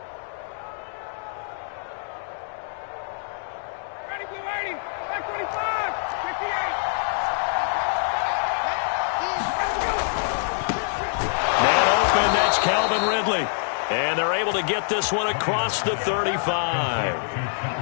Ready, blue 80, back 25, 58. That's Calvin Ridley. And they're able to get this one across the 35.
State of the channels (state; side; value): silent; right; digital silence